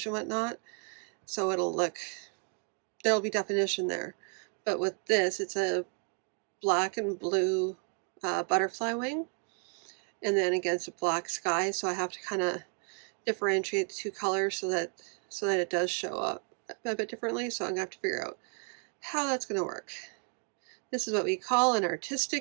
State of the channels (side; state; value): left; quieter; 39.9 dB